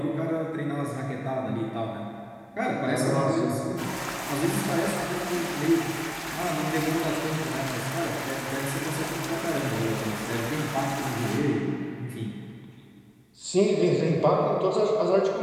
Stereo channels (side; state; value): both; identical; correlation 1.00